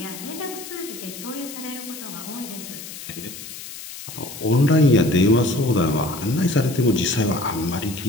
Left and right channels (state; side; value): noise; left; hiss, 12 dB below the sound